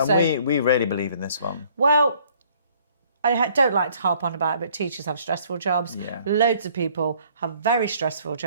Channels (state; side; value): inverted; both; correlation -0.60